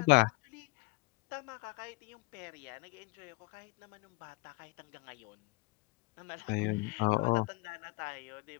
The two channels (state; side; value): quieter; right; 25.1 dB